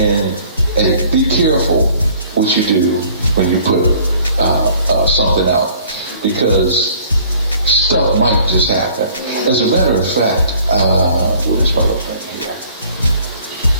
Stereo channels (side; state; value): both; inverted; correlation -0.55